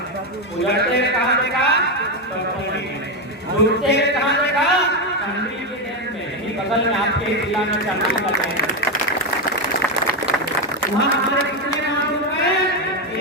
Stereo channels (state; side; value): normal; both; correlation 0.09